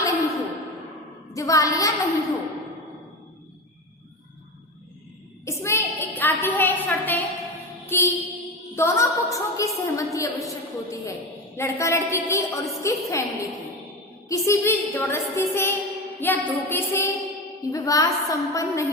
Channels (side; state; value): both; normal; correlation 0.23